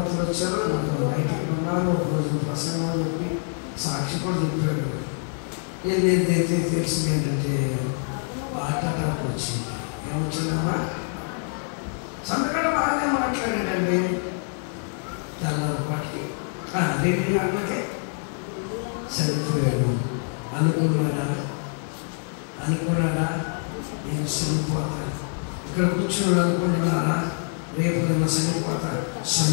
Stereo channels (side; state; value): right; silent; 58 dB below the other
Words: వచ్చారు. నాకు రైతులు ఉన్నారు. ఒక రోజు ప్రసంగం చెప్పి సాక్షి కూడా చెప్పాడు. ఏది తెలిసింది ఏంటంటే హార్ట్ అటాక్ వచ్చింది. ఏమొచ్చిందమ్మా? సంతకాడ బాగానే మాట్లాడాడండి. తెల్లపాటికి 2 గంటలకే చనిపోయాడు. అనుకున్నాడా నేను చనిపోతాను. ఇక్కడ కూర్చున్నాడు అనుకుంటున్నారా? రేపు నేను